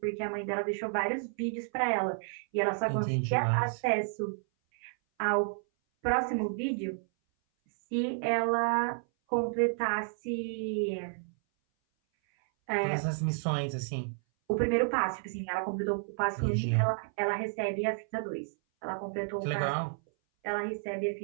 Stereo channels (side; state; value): left; silent; 57 dB below the other